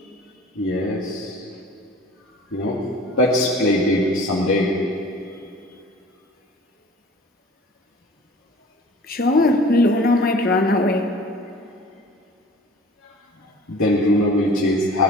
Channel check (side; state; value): both; normal; correlation 0.46